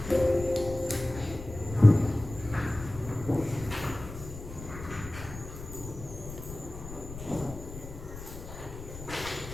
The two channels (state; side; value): noise; left; rumble, 12 dB below the sound